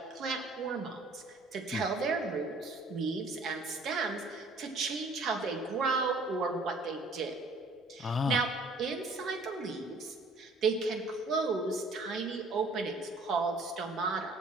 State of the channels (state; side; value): quieter; left; 3.0 dB